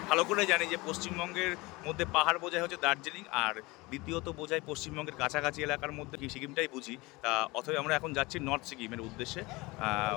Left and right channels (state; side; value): quieter; right; 23.2 dB